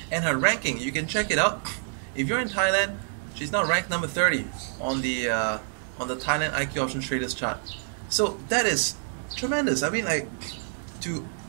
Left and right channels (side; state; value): left; silent; digital silence